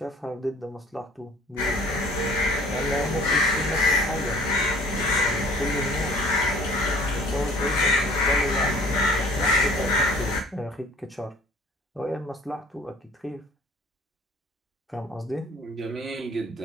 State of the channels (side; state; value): both; normal; correlation 0.52